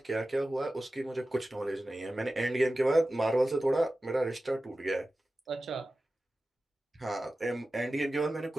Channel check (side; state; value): both; normal; correlation 0.95